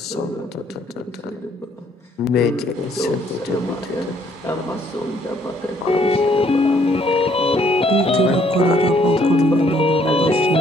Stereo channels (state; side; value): normal; both; correlation 0.65